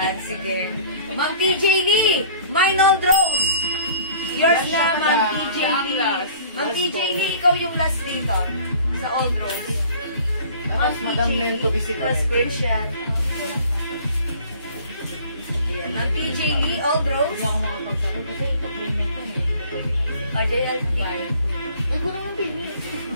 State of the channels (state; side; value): inverted; both; correlation -0.49